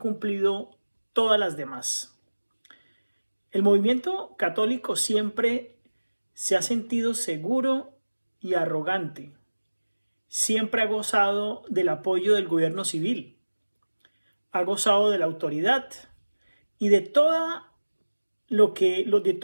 todas las demás. El movimiento católico siempre se ha sentido seguro y arrogante. Siempre ha gozado del apoyo del gobierno civil, ha gozado de la autoridad y de todo lo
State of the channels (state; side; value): inverted; both; correlation -1.00